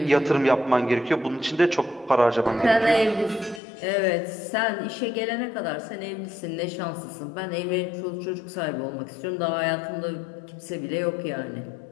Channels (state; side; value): drops out; right; at 3.6 s